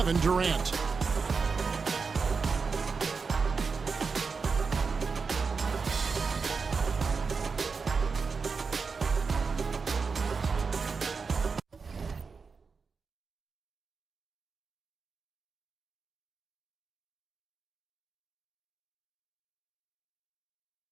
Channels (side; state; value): left; quieter; 5.0 dB